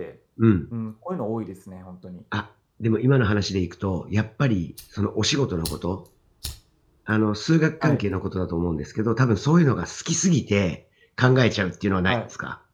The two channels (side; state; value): both; identical; correlation 1.00